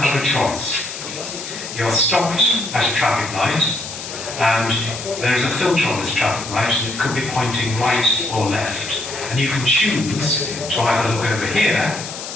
a choice. You're stopped at a traffic light and there's a filter on this traffic light and it could be pointing right or left. And you can choose to either look over here,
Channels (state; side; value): noise; left; hiss, 9 dB below the sound